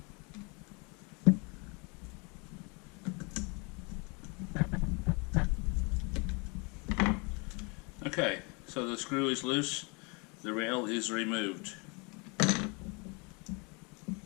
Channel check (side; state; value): right; quieter; 31.1 dB